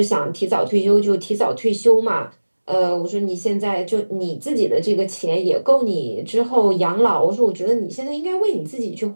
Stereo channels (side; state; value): both; inverted; correlation -1.00